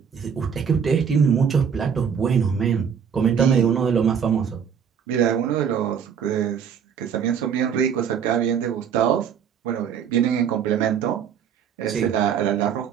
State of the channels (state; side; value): quieter; left; 7.5 dB